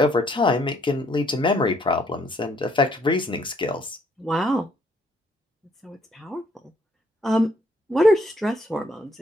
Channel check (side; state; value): both; normal; correlation 0.68